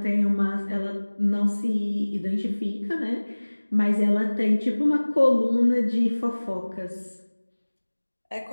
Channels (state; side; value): inverted; both; correlation -1.00